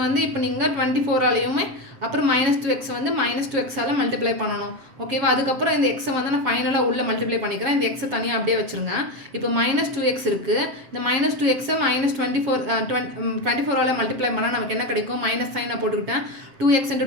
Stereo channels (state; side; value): late; left; 7.5 ms